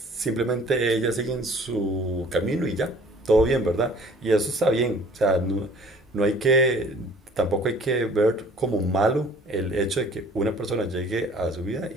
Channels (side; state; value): both; normal; correlation 0.52